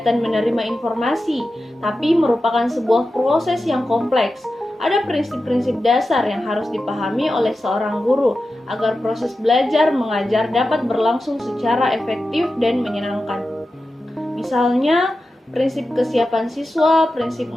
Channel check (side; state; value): both; normal; correlation 0.92